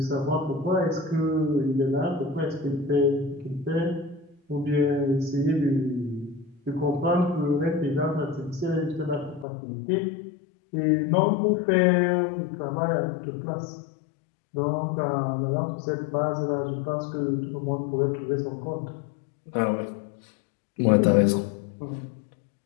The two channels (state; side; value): drops out; right; at 9.5 s